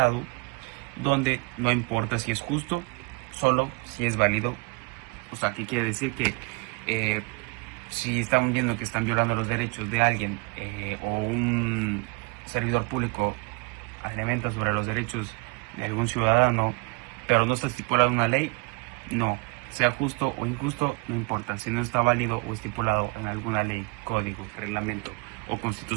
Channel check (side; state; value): left; quieter; 28.9 dB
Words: donde no importa si es justo, solo si es válido. O sea, ¿qué quiere decir? Que si estamos viendo que están violando los derechos de alguien, o un servidor público alimenta sobre los derechos de algún ciudadano, pero no está estipulada una ley, no, sea justo o injusto, no importa, si no está válido o estipulado en alguna ley, código, reglamento o